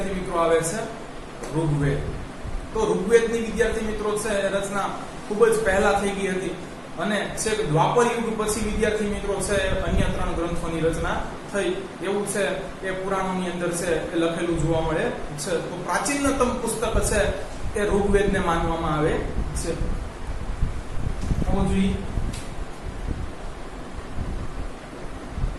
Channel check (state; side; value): identical; both; correlation 1.00